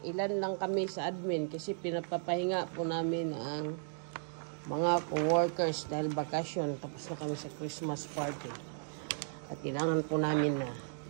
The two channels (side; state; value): left; silent; digital silence